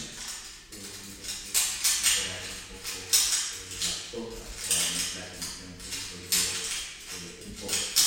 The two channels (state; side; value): identical; both; correlation 1.00